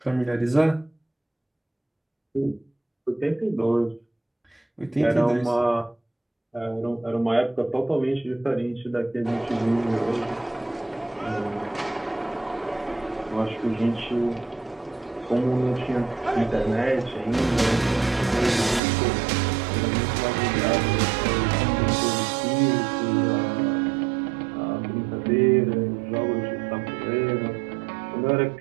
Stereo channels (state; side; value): drops out; left; at 18.8 s